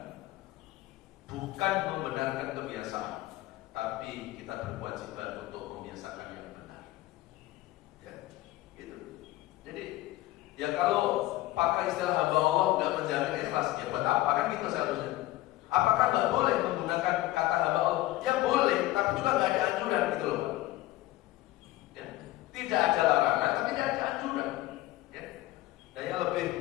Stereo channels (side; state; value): right; quieter; 17.0 dB